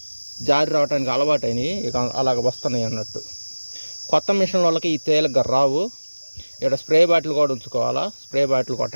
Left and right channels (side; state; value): both; inverted; correlation -1.00